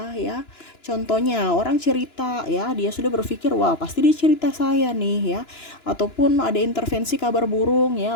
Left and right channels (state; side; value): late; right; 2.9 ms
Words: ya. Contohnya orang cerita ya, dia sudah berpikir wah pasti dia cerita saya nih ya, ataupun ada intervensi kabar burung